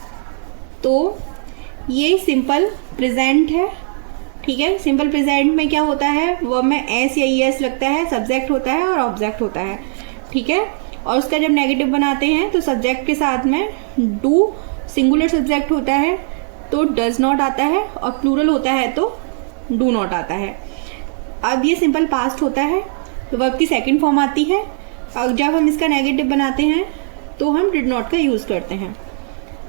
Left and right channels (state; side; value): silent; left; 61 dB below the other